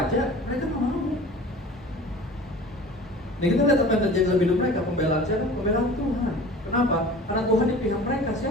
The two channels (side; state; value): both; normal; correlation 0.41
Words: mereka gak mau. Nah kita lihat apa yang terjadi dalam hidup mereka, pembelaan siapa? Pembelaan Tuhan. Kenapa? Karena Tuhan di pihak mereka,